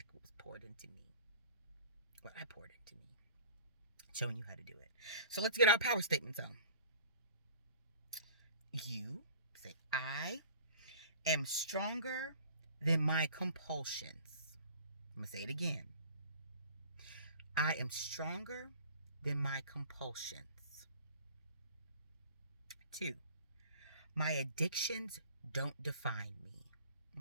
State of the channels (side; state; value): both; inverted; correlation -0.46